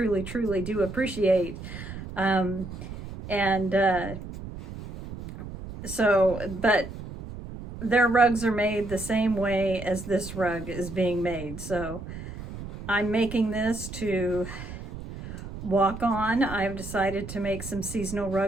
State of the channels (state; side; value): noise; right; rumble, 11 dB below the sound